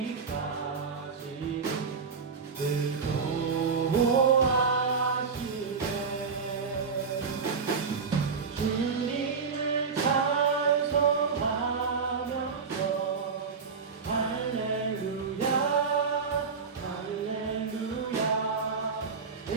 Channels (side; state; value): left; quieter; 5.3 dB